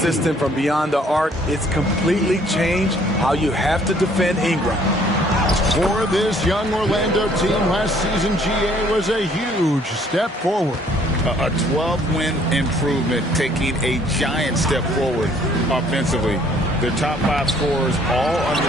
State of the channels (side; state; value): both; normal; correlation 0.61